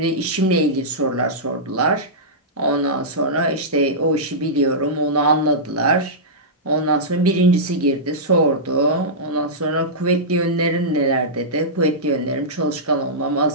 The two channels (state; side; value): normal; both; correlation -0.14